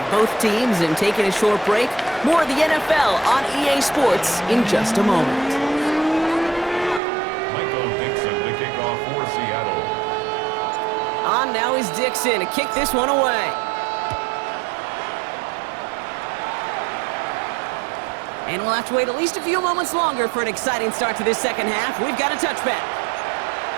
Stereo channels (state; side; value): drops out; left; at 7.0 s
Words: both teams in taking a short break. More of the NFL on EA Sports in just a moment. Michael Dixon to kick off for Seattle. On now is Dixon to kick this one away. And we'll have to wait at least a few moments longer for an exciting start to this second half. We've got a touchback.